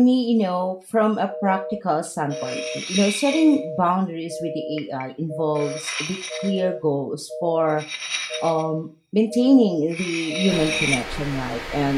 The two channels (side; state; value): both; identical; correlation 1.00